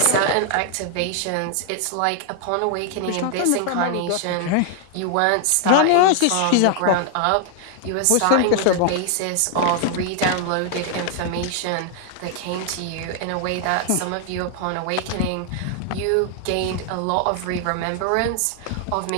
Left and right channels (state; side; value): different; both; correlation 0.00